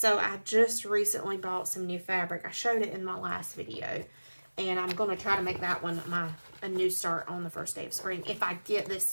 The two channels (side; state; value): both; inverted; correlation -1.00